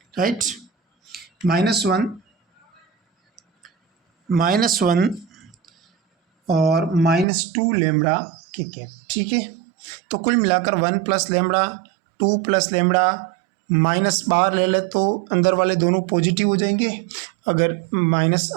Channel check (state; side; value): drops out; left; at 7.2 s